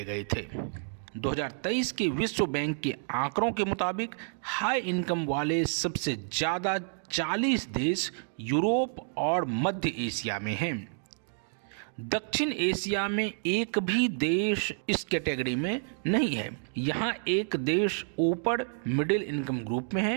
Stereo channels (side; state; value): left; silent; digital silence